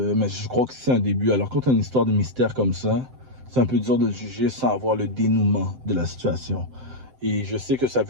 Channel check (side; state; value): left; late; 7.8 ms